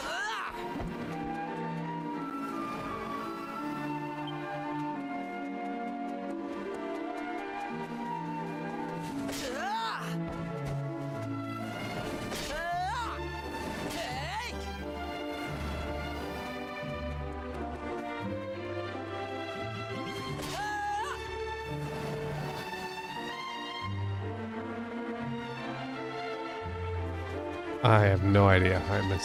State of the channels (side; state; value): both; identical; correlation 1.00